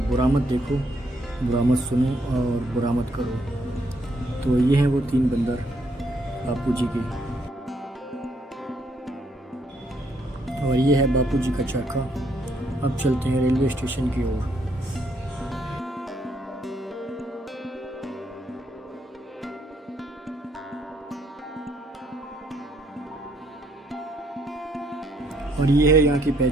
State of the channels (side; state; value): both; normal; correlation 0.72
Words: बुरा मत देखो, बुरा मत सुनो और बुरा मत करो। तो ये हैं वो 3 बंदर बापूजी के, और ये है बापूजी का चरखा। अब चलते हैं रेलवे स्टेशन की ओर। और ये है यहाँ की